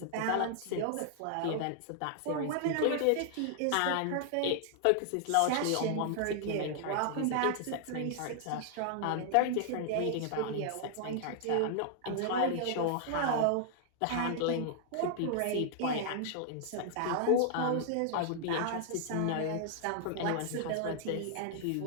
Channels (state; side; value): different; both; correlation -0.01